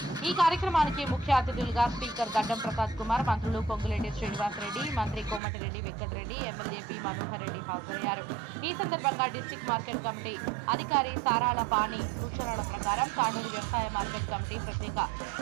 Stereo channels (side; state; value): left; drops out; at 5.4 s